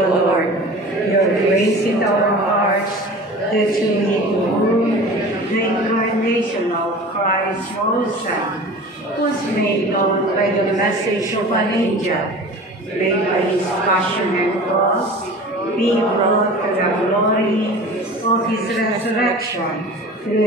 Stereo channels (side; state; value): both; normal; correlation 0.39